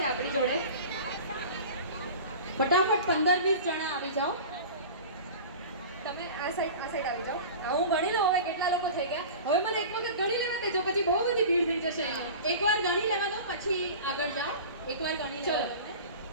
આપણી જોડે. ફટાફટ 15-20 જણા આવી જાઓ. તમે આ સાઈડ આવી જાઓ. હું ગણી લઉં હવે કેટલા લોકો થઈ ગયા. હવે મને એક વખત ગણી લેવા દેજો, પછી બહુ બધી ભીડ થઈ જશે અહીંયા. એકવાર ગણી લેવા દો, પછી આગળ જાઓ. એકવાર ગણી ચલો.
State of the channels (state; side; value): inverted; both; correlation -0.36